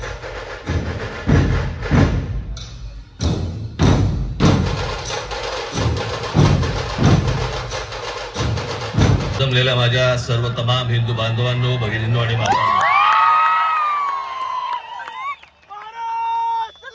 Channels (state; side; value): identical; both; correlation 1.00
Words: जमलेल्या माझ्या सर्व तमाम हिंदू बांधवांनो, भगिनींनो आणि माता